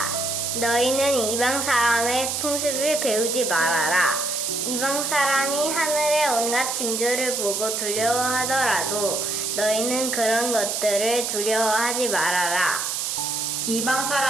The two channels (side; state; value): right; noise; hiss, 1 dB below the sound